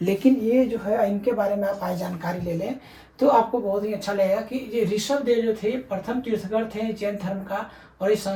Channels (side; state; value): both; identical; correlation 1.00